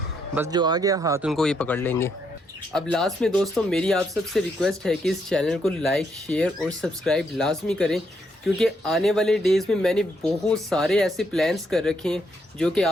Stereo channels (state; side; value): normal; both; correlation 0.76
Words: बस जो आ गया हाथ उनको ये पकड़ लेंगे। अब लास्ट में दोस्तों मेरी आप सबसे रिक्वेस्ट है कि इस चैनल को लाइक शेयर और सब्सक्राइब लाजमी करें, क्योंकि आने वाले डेज़ में मैंने बहुत सारे ऐसे प्लान्स कर रखे हैं जो कि